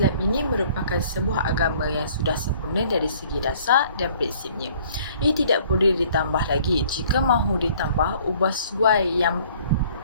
ini merupakan sebuah agama yang sudah sempurna dari segi dasar dan prinsipnya. Ia tidak boleh ditambah lagi. Jika mahu ditambah, ubah suai yang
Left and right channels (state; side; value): inverted; both; correlation -0.57